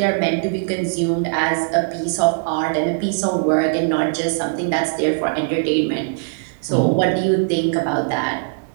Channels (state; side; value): silent; left; 59 dB below the other